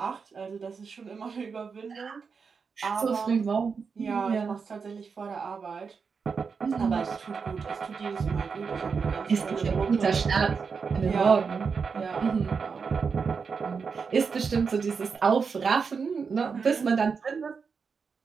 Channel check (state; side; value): quieter; left; 5.5 dB